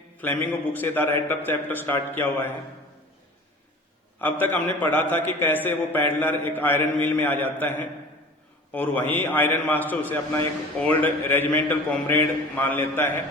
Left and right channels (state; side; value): normal; both; correlation 0.41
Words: फ्लेमिंगो बुक से the red trough chapter start किया हुआ है, अब तक हमने पढ़ा था कि कैसे वो पैडलर एक आयरन मिल में आ जाता है और वहीं आयरन मास्टर उसे अपना एक ओल्ड रेजिमेंटल कॉमरेड मान लेता है